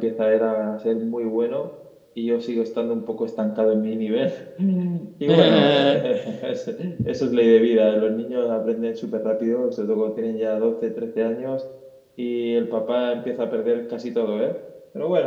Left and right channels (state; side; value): identical; both; correlation 1.00